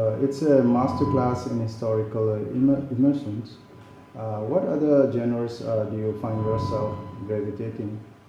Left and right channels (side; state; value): both; identical; correlation 1.00